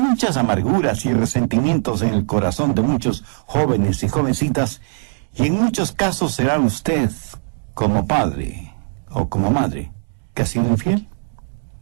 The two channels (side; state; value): left; silent; digital silence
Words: amarguras y resentimientos en el corazón de muchos jóvenes y jovencitas, y en muchos casos será usted, como padre o como madre, que ha sido infiel.